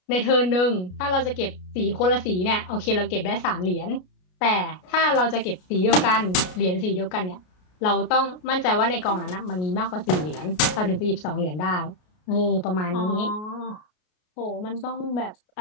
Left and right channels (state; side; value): late; right; 33 ms